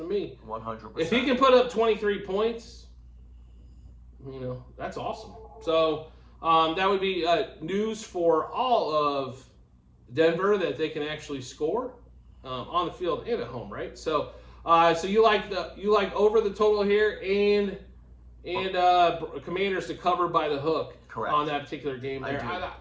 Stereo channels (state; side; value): identical; both; correlation 1.00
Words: me. 100%. If he can put up 23 points, that's awesome. So that would be news for all of Denver, that they can actually score on the field and at home, right? So so you like over the total here and Commanders to cover by the hook. Correct. On that particular game there.